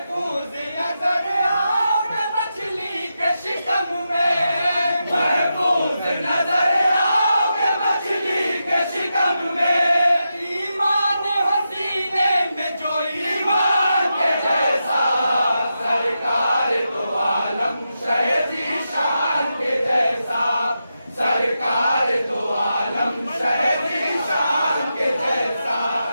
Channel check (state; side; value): inverted; both; correlation -0.87